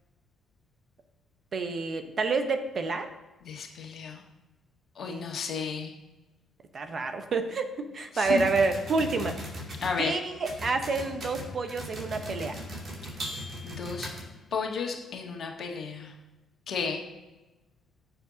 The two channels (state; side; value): normal; both; correlation 0.74